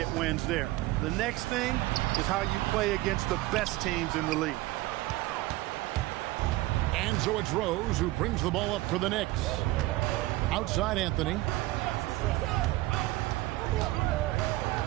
wins there. The next thing is how you play against the best teams in the league. And so it's Rose who brings the ball up for the Knicks. Outside Anthony.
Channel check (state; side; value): quieter; left; 18.6 dB